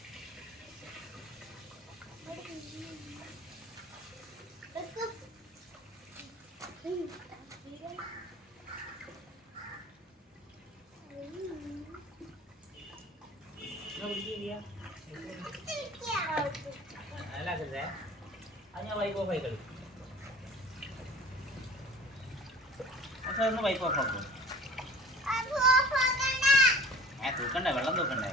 കേട്ടില്ല അല്ലാക്കല്ലേ അത് ഞാൻ വൈപ്പ് ഓഫ് ആയി കളി ഒന്ന് വൈപ്പ് ഓഫ് ആക്കും തൂക്കണ്ടേ വെള്ളം തൂക്കണ്ടേ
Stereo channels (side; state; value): both; normal; correlation 0.44